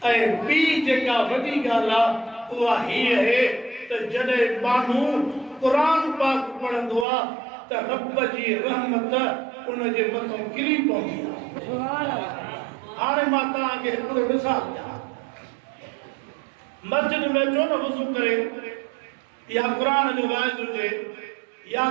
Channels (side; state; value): left; drops out; at 7.1 s